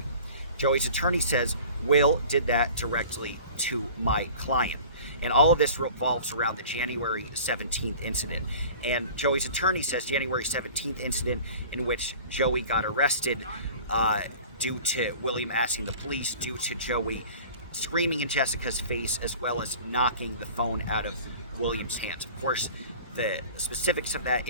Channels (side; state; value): both; inverted; correlation -0.43